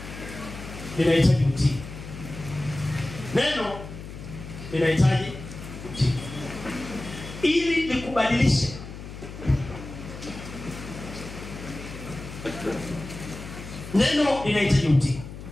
linahitaji utii. Neno linahitaji utii ili likubadilishe. Neno linahitaji utii.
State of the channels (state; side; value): noise; left; hum, 12 dB below the sound